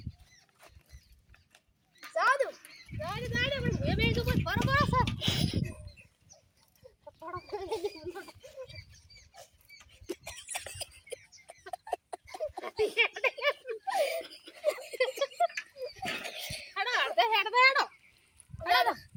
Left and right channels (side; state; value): both; identical; correlation 1.00